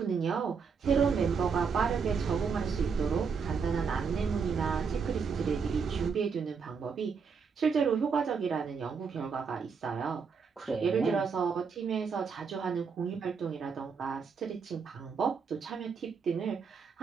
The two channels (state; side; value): quieter; left; 5.8 dB